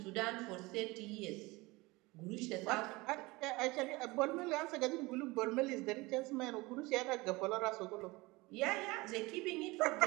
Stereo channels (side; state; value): left; quieter; 22.6 dB